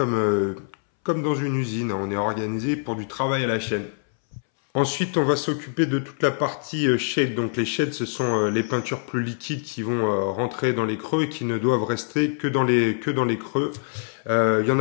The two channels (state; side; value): silent; right; 62 dB below the other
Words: dans une usine. On est organisé pour du travail à la chaîne. Ensuite, on va s'occuper de toute la partie shade. Donc les shades, ce sont les peintures plus liquides qui vont rentrer dans les creux et qui ne doivent rester que dans les creux. Il y en